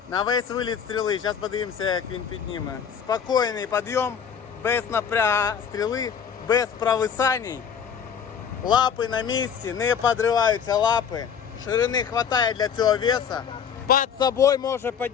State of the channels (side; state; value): right; quieter; 7.4 dB